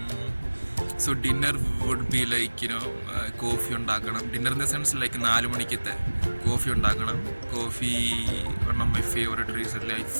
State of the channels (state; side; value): inverted; both; correlation -1.00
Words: So dinner would be like coffee ഉണ്ടാക്കണം. Dinner in the sense like 4 മണിക്കത്തെ കോഫി ഉണ്ടാക്കണം. Coffee one of my favorite recently. I